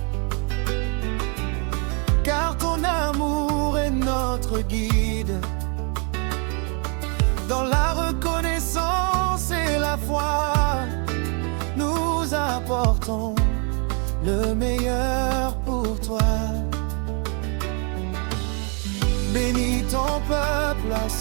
car ton amour est notre guide. Dans la reconnaissance et la foi, nous apportons le meilleur pour toi. Bénis ton peuple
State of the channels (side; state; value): left; quieter; 37.0 dB